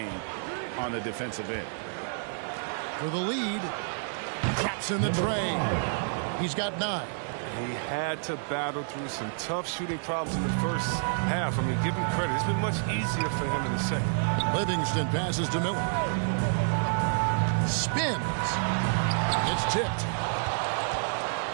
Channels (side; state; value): left; silent; digital silence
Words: on the defensive end. For the lead, drops in the tray. He's got 9. He had to battle through some tough shooting problems in the first half. I mean, give him credit. It's been much easier for him in the second. Livingston passes to Miller. Spins. It's tipped.